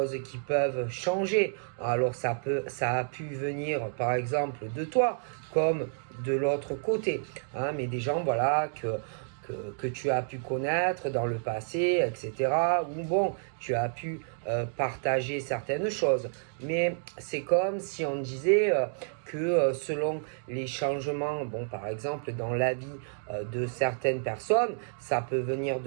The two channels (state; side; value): silent; left; digital silence